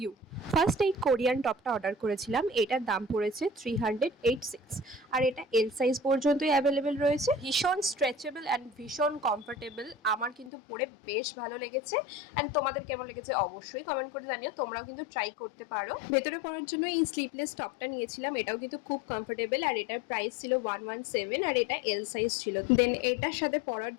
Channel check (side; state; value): right; drops out; at 10.5 s